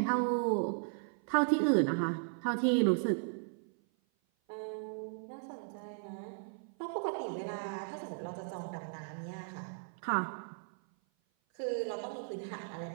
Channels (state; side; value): silent; left; 54 dB below the other